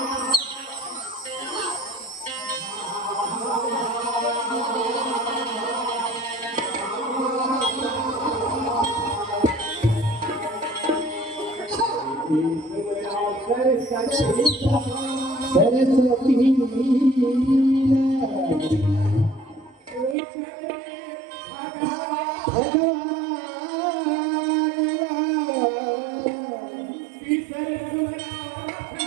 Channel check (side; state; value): left; drops out; at 20.2 s